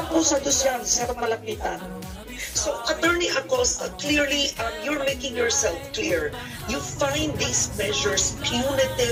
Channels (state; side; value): identical; both; correlation 1.00